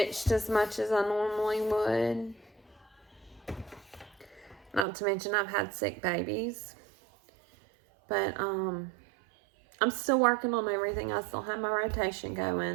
as much as I normally would. Not to mention I've had sick babies. But, I'm still working on everything. I still have my rotation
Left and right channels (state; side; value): drops out; left; at 4.9 s